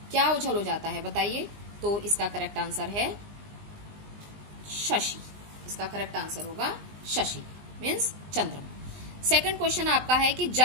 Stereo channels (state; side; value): late; left; 20 ms